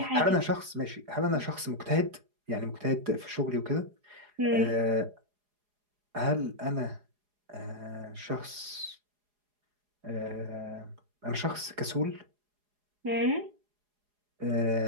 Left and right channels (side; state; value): left; late; 4.8 ms